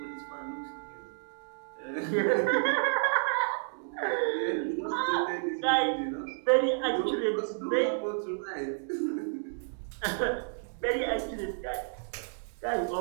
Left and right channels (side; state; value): left; silent; digital silence